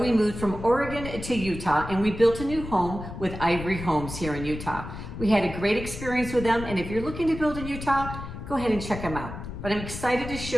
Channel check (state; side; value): noise; left; rumble, 9 dB below the sound